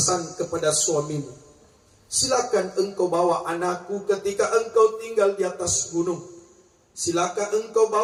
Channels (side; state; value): both; identical; correlation 1.00